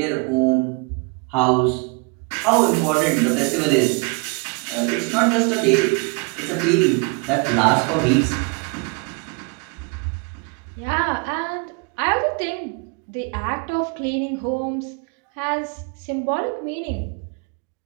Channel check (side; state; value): left; quieter; 30.9 dB